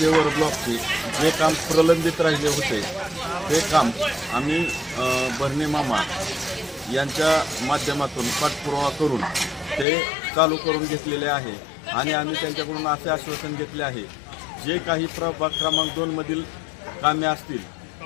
ब्लॉकचे जे काम प्रलंबित राहिले होते ते काम आम्ही भरणे मामा यांच्या माध्यमातून पाठपुरावा करून ते चालू करून घेतलेले आहे आणि आम्ही त्यांच्याकडून असे आश्वासन घेतले आहे जे काही प्रभाग क्रमांक 2 मधील कामे असतील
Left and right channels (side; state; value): right; drops out; at 9.9 s